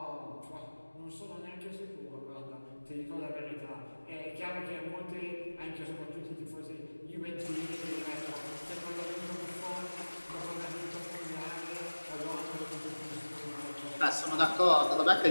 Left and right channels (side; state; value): both; inverted; correlation -1.00